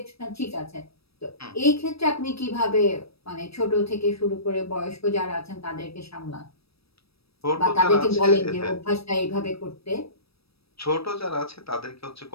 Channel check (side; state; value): right; late; 0.77 ms